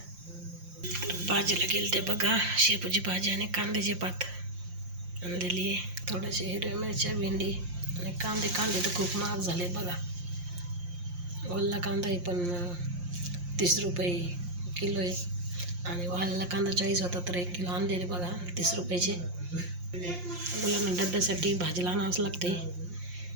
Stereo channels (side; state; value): left; late; 5.7 ms